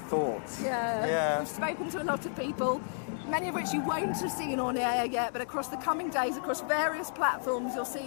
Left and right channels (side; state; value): right; silent; digital silence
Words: Yeah. We've spoken to a lot of people, many of which you won't have seen on air yet, but across the coming days, across various platforms, you'll